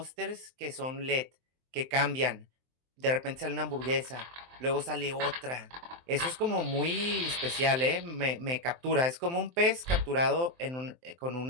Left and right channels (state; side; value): late; left; 23 ms